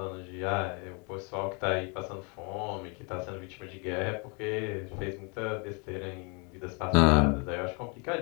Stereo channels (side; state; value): right; quieter; 33.6 dB